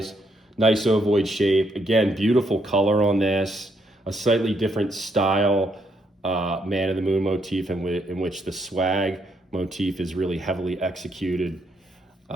nice ovoid shape. Again, beautiful color on this. A slightly different style Man in the Moon motif in which the swag motif is really heavily executed.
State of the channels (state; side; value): normal; both; correlation 0.75